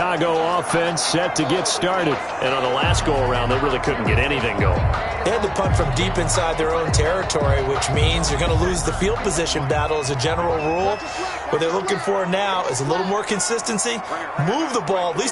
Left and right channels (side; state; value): both; identical; correlation 1.00